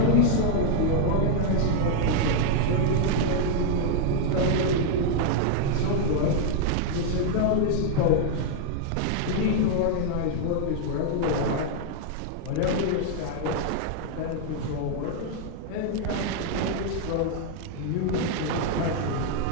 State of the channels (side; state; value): both; different; correlation 0.00